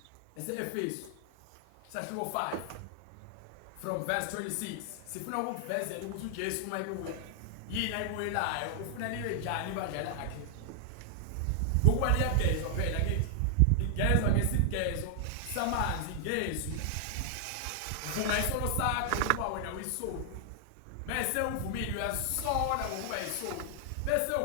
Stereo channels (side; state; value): both; different; correlation 0.00